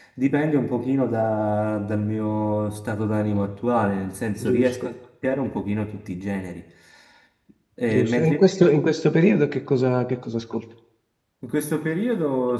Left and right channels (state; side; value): identical; both; correlation 1.00